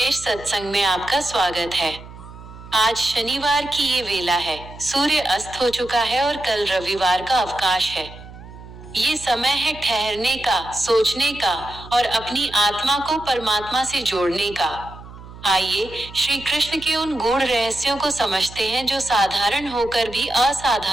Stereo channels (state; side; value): noise; right; hum, 16 dB below the sound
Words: सत्संग में आपका स्वागत है। आज शनिवार की ये वेला है, सूर्य अस्त हो चुका है और कल रविवार का अवकाश है। ये समय है ठहरने का, सोचने का और अपनी आत्मा को परमात्मा से जोड़ने का। आइए श्री कृष्ण के उन गूढ़ रहस्यों को समझते हैं जो साधारण होकर भी